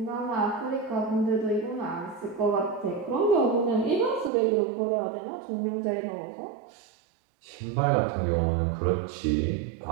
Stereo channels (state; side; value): drops out; left; at 4.3 s